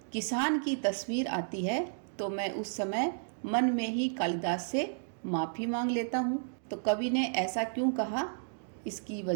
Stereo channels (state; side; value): silent; left; digital silence